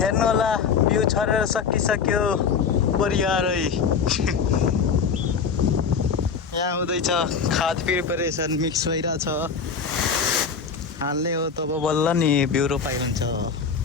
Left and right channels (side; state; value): right; quieter; 5.9 dB